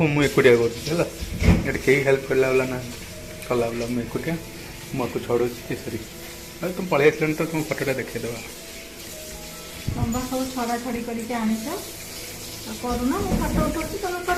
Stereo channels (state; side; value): identical; both; correlation 1.00